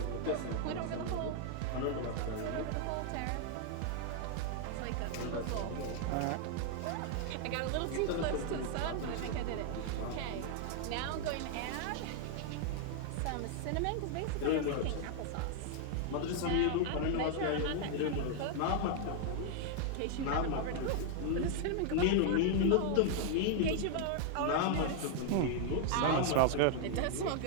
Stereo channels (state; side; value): different; both; correlation 0.00